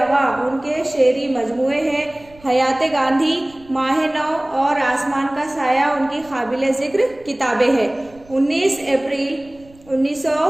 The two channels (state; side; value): noise; right; rumble, 26 dB below the sound